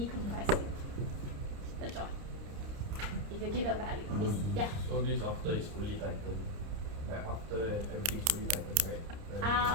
the joint. If you give a value, it's, yeah. So this after it's fully tightened, like after everything's fully tightened, right?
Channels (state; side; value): late; left; 30 ms